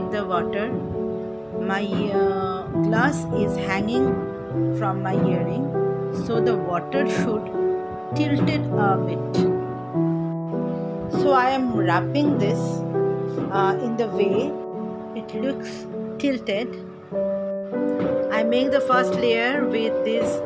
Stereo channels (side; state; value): both; identical; correlation 1.00